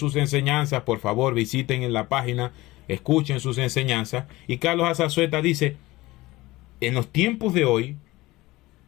enseñanzas. Por favor, visiten en la página, escuchen sus enseñanzas. Y Carlos Azazueta dice, en los tiempos de hoy,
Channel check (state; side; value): quieter; right; 19.5 dB